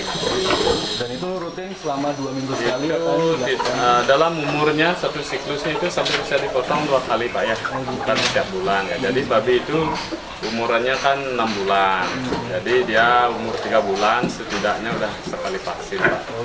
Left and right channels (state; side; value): identical; both; correlation 1.00